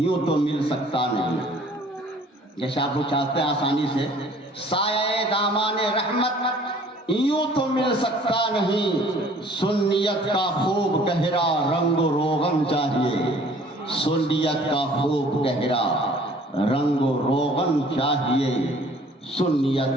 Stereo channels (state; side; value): normal; both; correlation 0.54